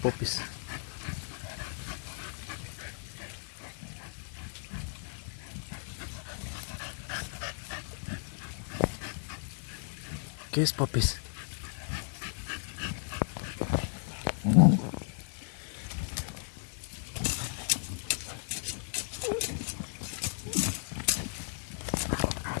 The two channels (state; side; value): silent; right; digital silence